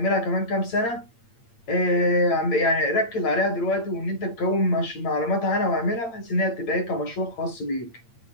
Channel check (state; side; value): late; right; 8.7 ms